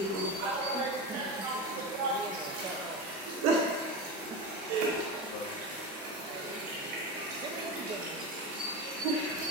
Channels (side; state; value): both; normal; correlation 0.22